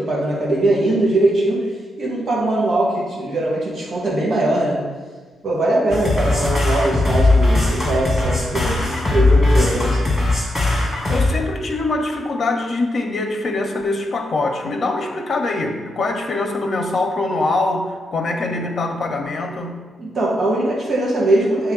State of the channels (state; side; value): normal; both; correlation 0.83